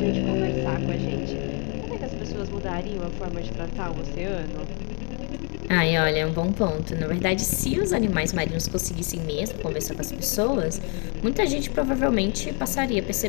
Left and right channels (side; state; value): right; quieter; 36.0 dB